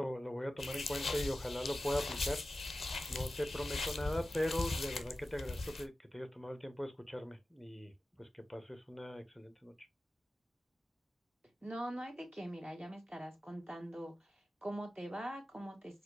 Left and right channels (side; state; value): both; normal; correlation 0.94